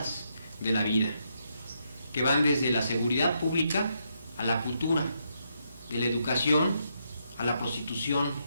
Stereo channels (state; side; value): inverted; both; correlation -0.78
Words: de la vida, que van desde la seguridad pública a la cultura, de la educación a la prostitución,